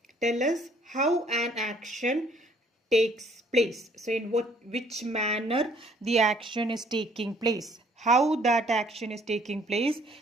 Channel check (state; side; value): normal; both; correlation 0.61